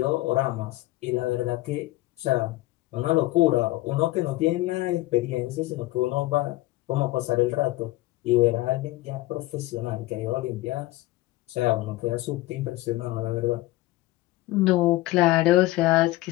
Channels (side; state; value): right; quieter; 18.2 dB